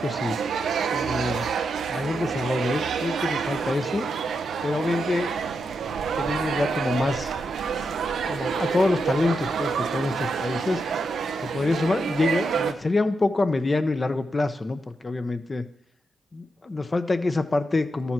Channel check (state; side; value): normal; both; correlation 0.84